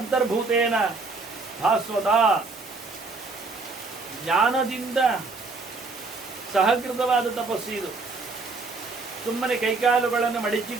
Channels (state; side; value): quieter; left; 3.8 dB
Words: ಭಾಸ್ವತ, ಜ್ಞಾನದಿಂದ ಸಹಕೃತವಾದ ತಪಸ್ಸು ಇದು. ಸುಮ್ಮನೆ ಕೈಕಾಲುಗಳನ್ನು